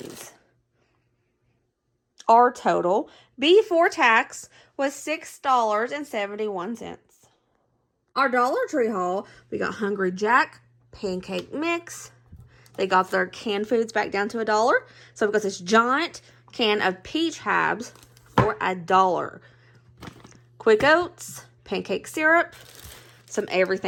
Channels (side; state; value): both; identical; correlation 1.00